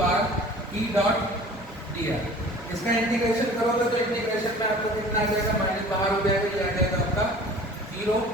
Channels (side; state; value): both; normal; correlation 0.45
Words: R E dot dr। इसका इंटीग्रेशन करोगे तो इंटीग्रेशन में आपको कितना आ जाएगा, माइनस बाहर हो जाएगा, ये आ जाएगा आपका 0।